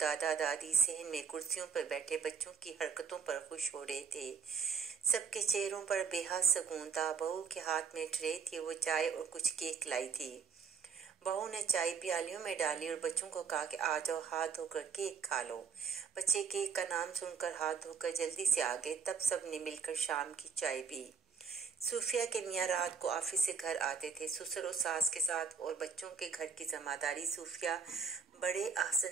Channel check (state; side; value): quieter; left; 6.2 dB